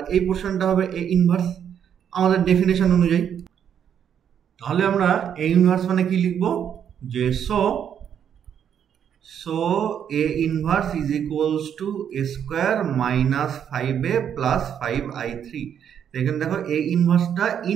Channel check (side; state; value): left; quieter; 8.7 dB